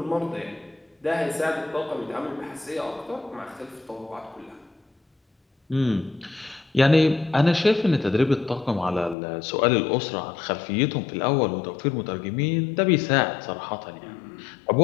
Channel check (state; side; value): drops out; right; at 9.2 s